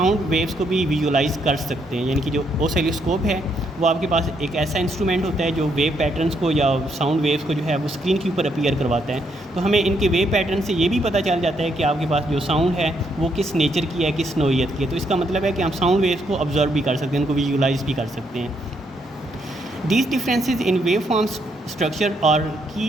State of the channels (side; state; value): both; normal; correlation 0.75